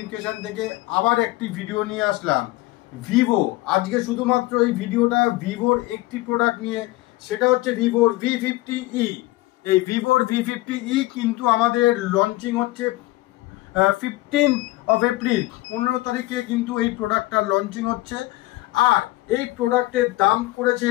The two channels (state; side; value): quieter; right; 19.3 dB